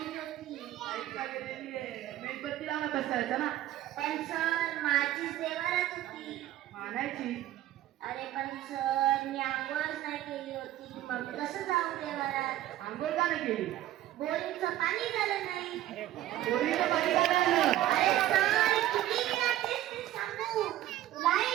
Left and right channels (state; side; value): quieter; left; 13.8 dB